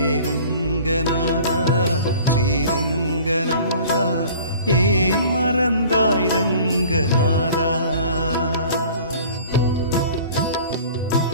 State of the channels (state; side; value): inverted; both; correlation -0.46